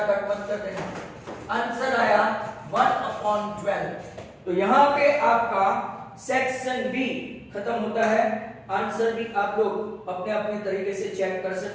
कट मत कर देना। आंसर आया 1 अपॉन 12। तो यहां पे आपका सेक्शन बी खत्म होता है। आंसर भी आप लोग अपने अपने तरीके से चेक कर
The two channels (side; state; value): both; identical; correlation 1.00